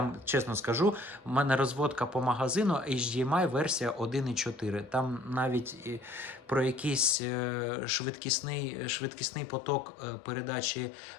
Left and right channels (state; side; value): drops out; right; at 7.2 s